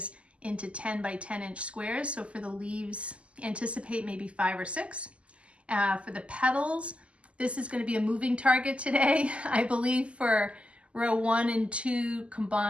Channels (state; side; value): late; left; 0.057 ms